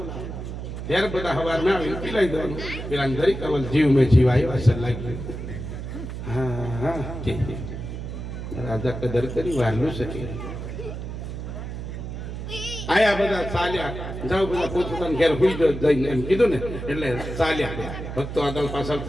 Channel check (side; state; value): right; noise; hum, 7 dB below the sound